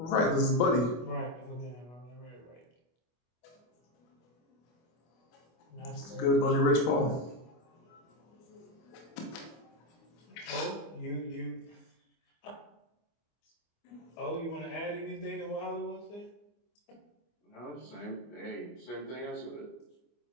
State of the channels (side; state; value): right; late; 25 ms